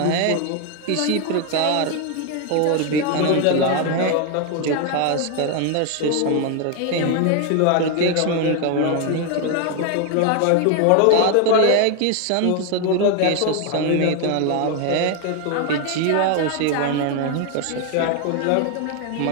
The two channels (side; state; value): both; different; correlation 0.01